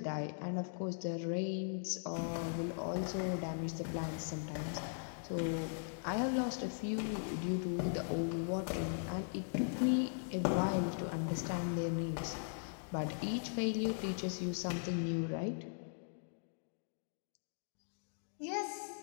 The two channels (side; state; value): right; silent; digital silence